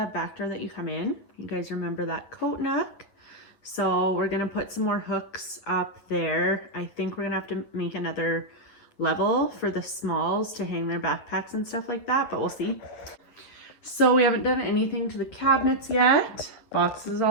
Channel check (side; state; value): right; late; 8.8 ms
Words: back door that you come in. You guys remember that coat nook? So we're gonna put some more hooks up there. I think we're gonna have to make another level for the smalls to hang their backpacks and stuff like that, but we'll see. So we haven't done anything to the cabinets yet. Boxes